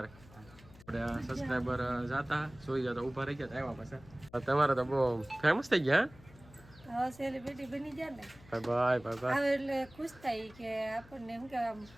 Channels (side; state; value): left; noise; hum, 22 dB below the sound